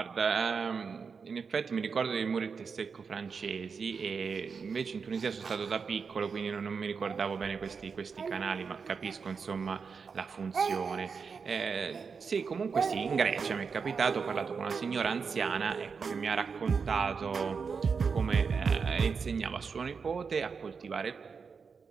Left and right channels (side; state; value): left; quieter; 5.5 dB